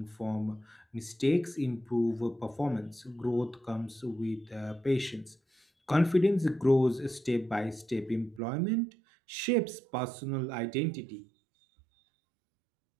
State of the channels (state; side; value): drops out; left; at 8.4 s